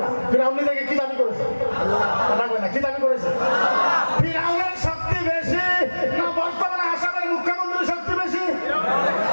ফিরাউন নিজেকে কি দাবি করেছে? কথা কয় না, কি দাবি করেছে? ফিরাউনের শক্তি বেশি না বর্তমানে আসামের মুখ্যমন্ত্রীর শক্তি বেশি?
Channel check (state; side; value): inverted; both; correlation -1.00